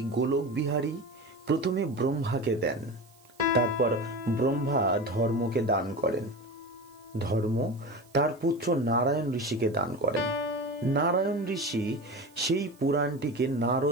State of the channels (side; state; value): right; noise; hiss, 29 dB below the sound